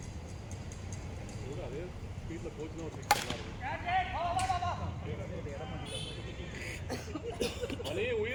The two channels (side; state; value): both; identical; correlation 1.00